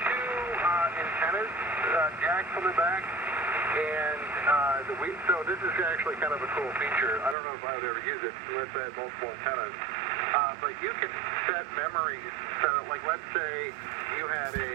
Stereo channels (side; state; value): left; drops out; at 7.4 s